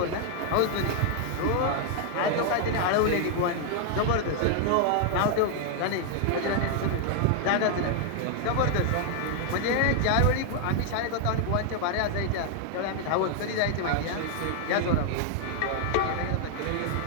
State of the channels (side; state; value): both; different; correlation 0.00